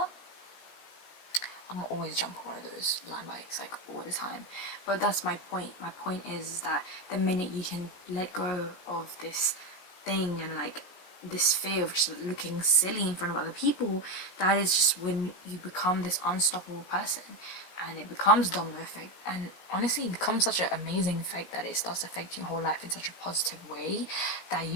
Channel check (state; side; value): late; right; 16 ms